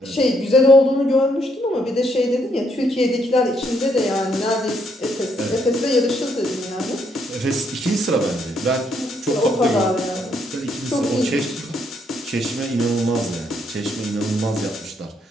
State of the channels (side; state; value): both; normal; correlation 0.73